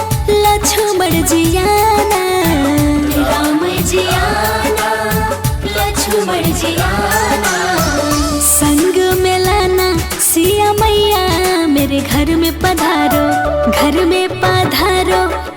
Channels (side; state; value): both; identical; correlation 1.00